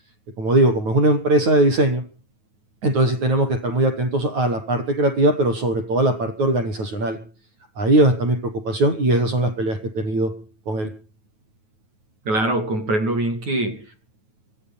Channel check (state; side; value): late; left; 9.3 ms